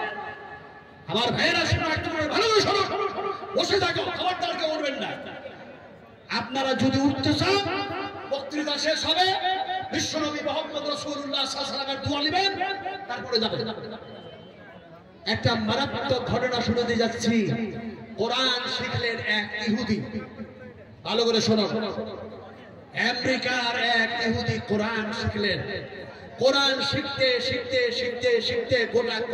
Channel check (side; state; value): both; identical; correlation 1.00